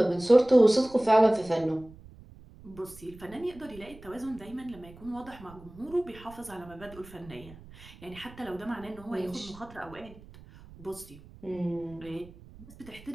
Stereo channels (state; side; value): noise; right; rumble, 20 dB below the sound